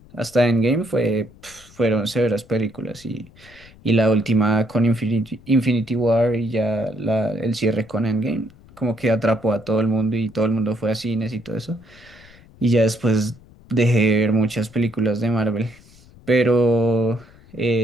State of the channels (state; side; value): noise; left; rumble, 24 dB below the sound